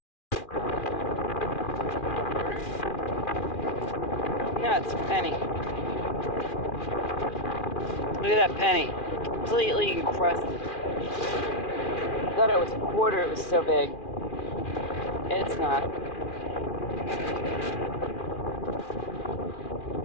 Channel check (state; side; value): late; right; 2.4 ms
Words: no, it's a penny. Look at that penny. Completely encrusted. I thought it was a quarter, it was so big. It's not.